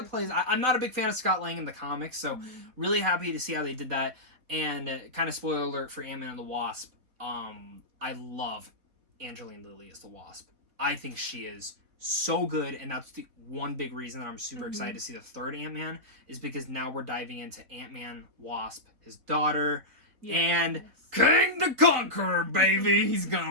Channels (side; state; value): left; late; 4.1 ms